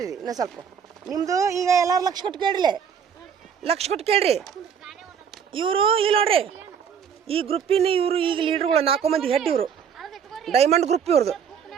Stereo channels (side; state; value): left; quieter; 7.4 dB